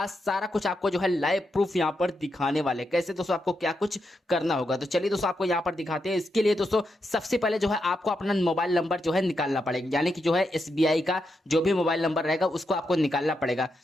सारा कुछ आपको जो है लाइव प्रूफ यहाँ पर दिखाने वाले कैसे दोस्तों आपको क्या कुछ करना होगा। तो चलिए दोस्तों आपको यहाँ पर दिखाते हैं। इसके लिए दोस्तों सबसे पहले जो है आपको अपना मोबाइल नंबर जो है निकालना पड़ेगा, यानी कि जो है एसबीआई का जो भी मोबाइल नंबर रहेगा उसको आपको निकालना पड़ेगा।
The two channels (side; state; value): both; normal; correlation 0.84